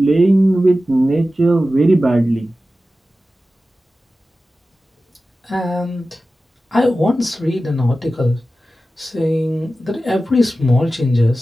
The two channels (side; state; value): both; normal; correlation 0.94